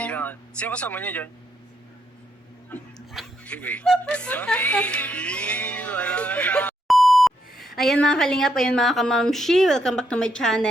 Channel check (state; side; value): normal; both; correlation 0.77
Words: yan. Sino kasama niya dyan? Anyway. Wala na. Ayan mga kalingap, ayan mga kamamshi, welcome back to my